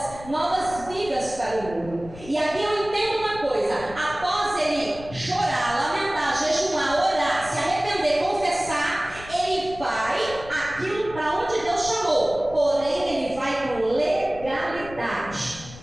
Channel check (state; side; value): noise; left; rumble, 16 dB below the sound